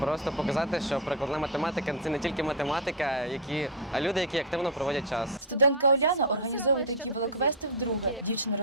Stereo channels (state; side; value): normal; both; correlation 0.02